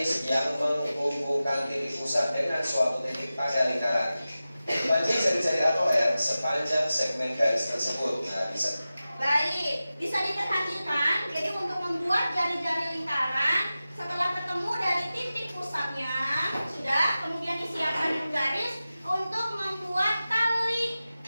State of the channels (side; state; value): both; inverted; correlation -0.95